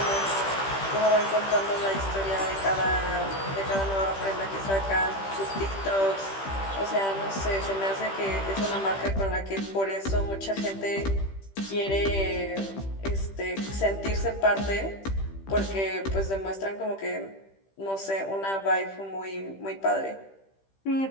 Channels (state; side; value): late; right; 15 ms